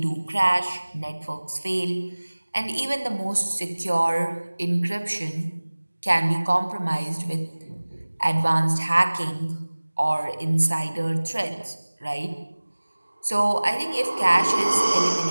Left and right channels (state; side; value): inverted; both; correlation -1.00